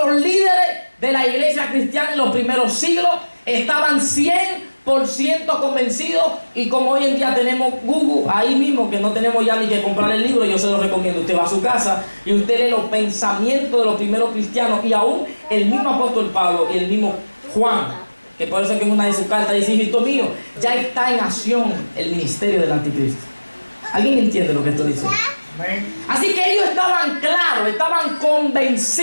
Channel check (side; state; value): both; inverted; correlation -1.00